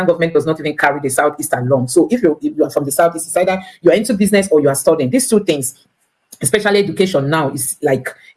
government does not even carry the Southeast along. So if you are from the Southeast, it's either you are into business or you are studying. These 2 things, especially education now, is like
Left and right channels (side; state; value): both; identical; correlation 1.00